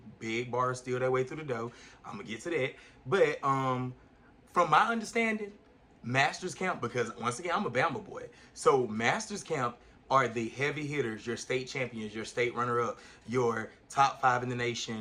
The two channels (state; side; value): identical; both; correlation 1.00